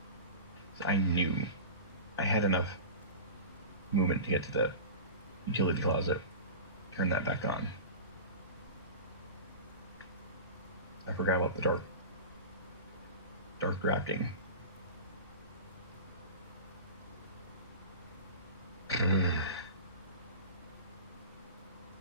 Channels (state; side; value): inverted; both; correlation -0.32